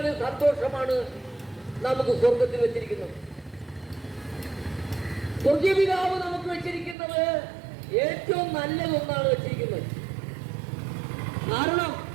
സന്തോഷമാണ് നമുക്ക് സ്വർഗത്തിൽ വെച്ചിരിക്കുന്നത്. സ്വർഗീയ പിതാവ് നമുക്ക് വെച്ചിരിക്കുന്നത് ഏറ്റവും നല്ലതൊന്നാണ് വെച്ചിരിക്കുന്നത്. കാരണം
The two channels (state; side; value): drops out; left; at 7.0 s